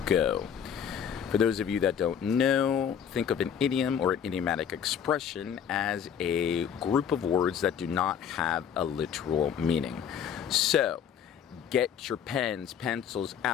go. For those of you that don't know, think of an idiom or an idiomatic expression as a group of words that do not have a literal meaning. So get your pens, pencils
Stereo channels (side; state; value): right; quieter; 8.2 dB